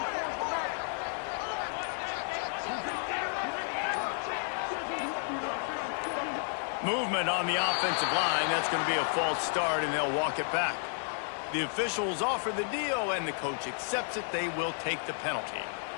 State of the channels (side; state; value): right; silent; 56 dB below the other